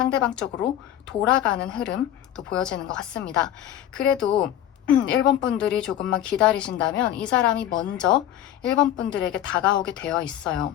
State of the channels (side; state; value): right; quieter; 11.6 dB